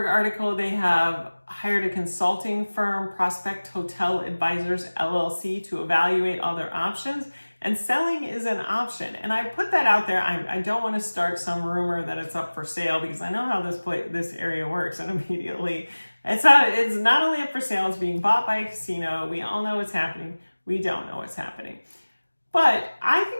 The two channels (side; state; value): both; inverted; correlation -1.00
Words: article, they have hired a consulting firm, Prospect Hotel Advisors LLC, to evaluate all their options, and selling is an option. And I put that out there. I don't want to start some rumor that it's up for sale, because I know how this area works, and immediately it's not only up for sale, it's being bought by a casino. We all know what's happening. We don't know what's happening. But I